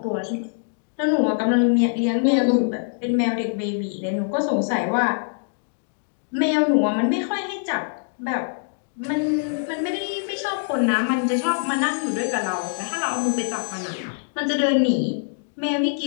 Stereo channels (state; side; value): silent; right; digital silence